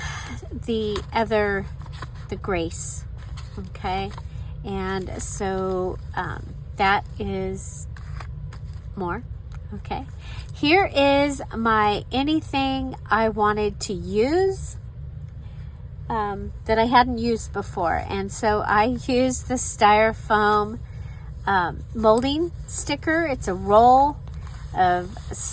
the Grace, okay? And so that is more, okay? Here is my anything I wanted to use that I hadn't used before. And so I used the styrofoam molding sticker. It's a roll of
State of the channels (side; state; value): both; identical; correlation 1.00